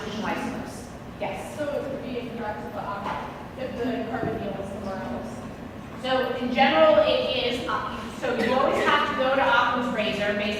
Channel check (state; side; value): identical; both; correlation 1.00